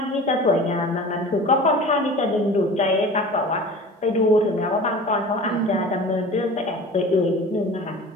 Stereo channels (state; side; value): normal; both; correlation 0.39